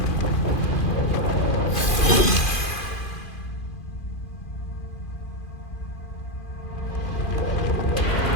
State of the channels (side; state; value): right; late; 2.4 ms